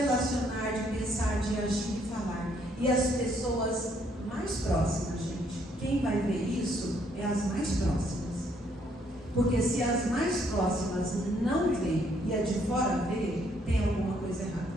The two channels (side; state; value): both; normal; correlation 0.69